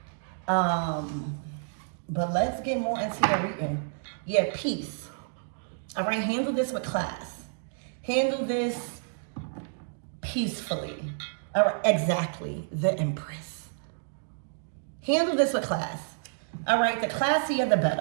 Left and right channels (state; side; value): silent; left; digital silence